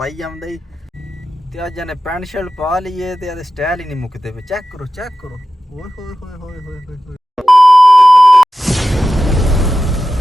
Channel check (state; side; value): normal; both; correlation 0.93